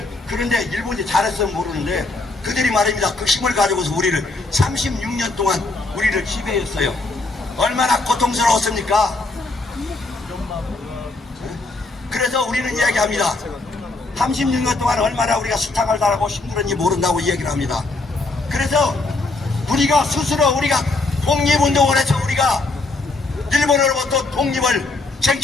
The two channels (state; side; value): quieter; right; 3.3 dB